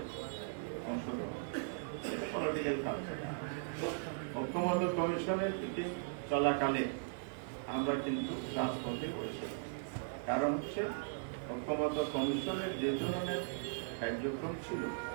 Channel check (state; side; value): silent; left; 52 dB below the other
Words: অংশগ্রহণ, পলিটিক্যাল কালচার। ঐক্যমত্য কমিশনের থেকে চলাকালে আমরা কিন্তু রাজপথে বসে, কারণ হচ্ছে ঐক্যমত্য কমিশনের যে ধরনের কার্যক্রম ছিল,